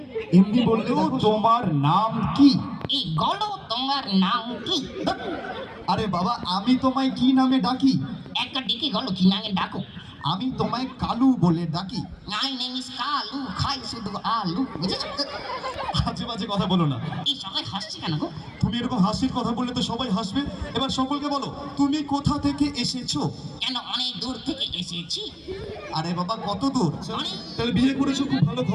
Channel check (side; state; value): both; identical; correlation 1.00